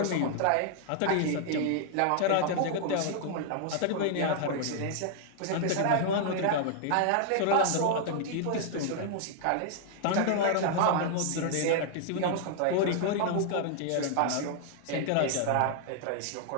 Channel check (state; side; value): different; both; correlation 0.00